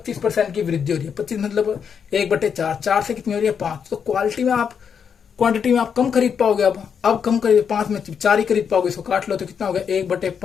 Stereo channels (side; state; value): right; quieter; 7.1 dB